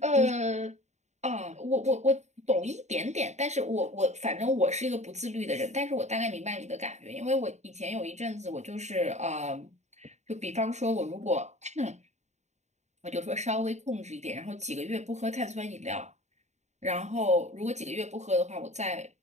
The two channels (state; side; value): late; left; 0.33 ms